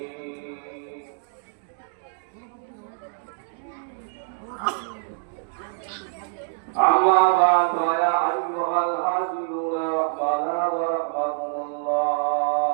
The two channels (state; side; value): silent; left; digital silence